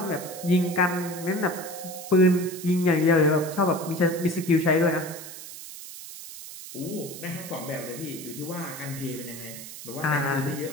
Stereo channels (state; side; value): noise; right; hiss, 12 dB below the sound